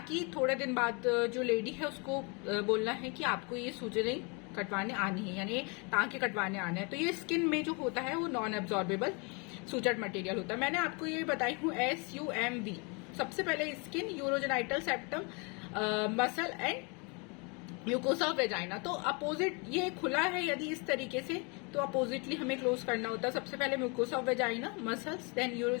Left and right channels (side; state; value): right; quieter; 32.0 dB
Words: थोड़े दिन बाद जो लेडी है उसको बोलना है कि आपको ये सूचरिंग कटवाने आनी है, यानी टांके कटवाने आने हैं। तो ये स्किन में जो होता है वो नॉन एब्जॉर्बेबल सूचर्ड मटेरियल होता है। मैंने आपको ये बताई हूँ SUMB। सबसे पहले skin, urogenital septum, muscle and mucosa of vagina. तो अपोजिट ये खुला है यदि इस तरीके से, तो अपोजिटली हमें क्लोज करना होता है। सबसे पहले mucosa of vagina, muscles, then